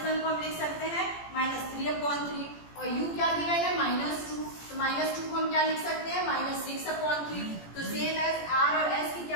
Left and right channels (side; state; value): right; late; 17 ms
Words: को हम लिख सकते हैं -3/3, और U क्या गिवन है -2, तो -2 को हम क्या लिख सकते हैं -6/3। तो सेम एज R और S की